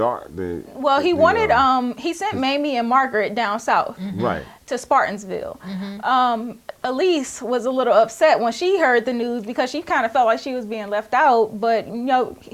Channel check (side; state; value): both; identical; correlation 1.00